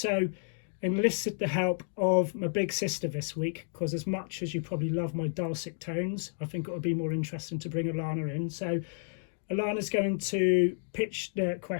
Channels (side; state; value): right; silent; digital silence